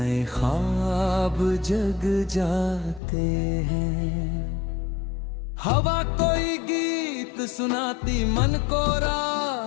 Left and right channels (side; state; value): right; drops out; at 3.0 s